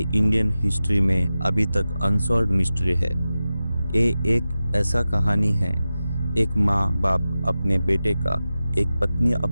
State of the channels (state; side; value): inverted; both; correlation -0.94